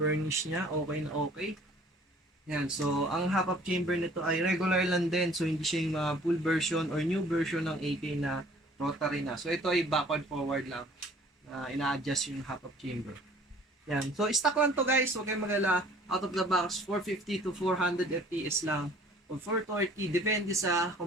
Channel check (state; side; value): normal; both; correlation 0.53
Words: niya. Okay na okay. Yan. Ang half-up chamber nito ay regular lang din. Hindi siya yung full version or new version ng AK na rotary na. Ito ay backward-forward lang. Ina-adjust yung half-up chamber. Yan. Stock lang to guys. Huwag kayong magala. Out of the box, 450 to 400 FPS lang. O 430. Depende sa